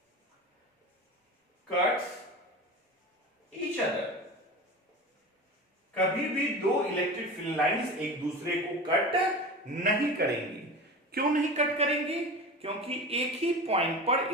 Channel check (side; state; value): both; normal; correlation 0.31